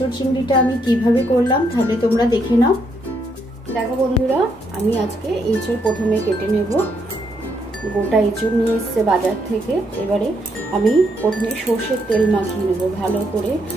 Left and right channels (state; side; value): normal; both; correlation 0.75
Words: चिंगड़ीटा आमी किभाबे करलाम ताहले तोमरा देखे नाओ। देखो बंधुरा आमी आजके एचोड़ प्रथमे केटे नेब। गोटा एचोड़ निये एसेছে बाजार থেকে। এবারে আমি প্রথমে সরষের তেল মাখিয়ে নেব, ভালো করে